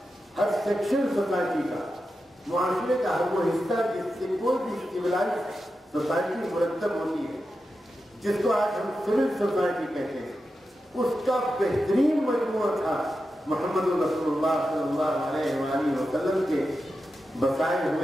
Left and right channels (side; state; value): both; normal; correlation 0.90